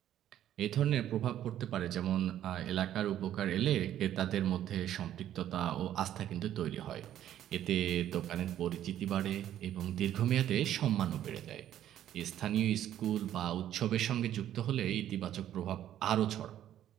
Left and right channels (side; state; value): left; quieter; 11.5 dB